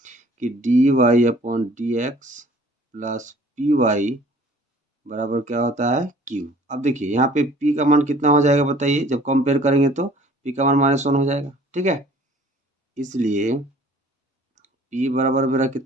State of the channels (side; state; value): both; normal; correlation 0.53